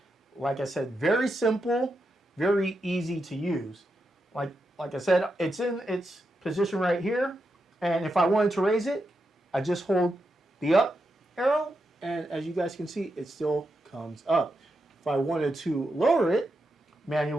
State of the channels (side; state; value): both; normal; correlation 0.86